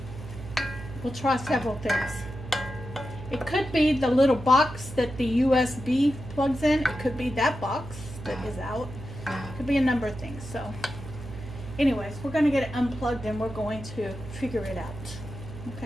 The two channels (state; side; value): noise; right; hum, 12 dB below the sound